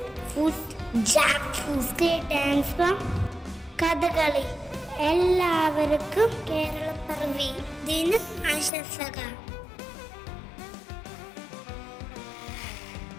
food jackfruit. State dance from Kathakali. എല്ലാവർക്കും കേരളപ്പിറവി ദിന ആശംസകൾ.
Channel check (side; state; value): right; drops out; at 8.7 s